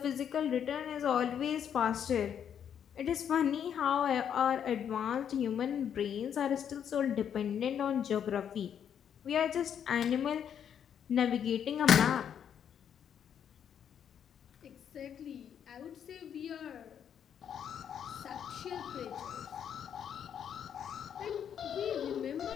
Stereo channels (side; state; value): right; quieter; 8.6 dB